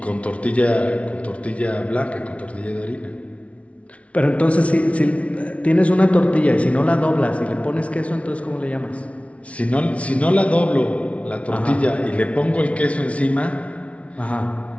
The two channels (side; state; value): right; late; 0.063 ms